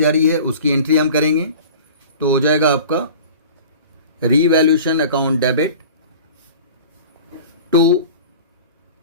रही है, उसकी एंट्री हम करेंगे, तो हो जाएगा आपका revaluation account debit to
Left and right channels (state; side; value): inverted; both; correlation -0.40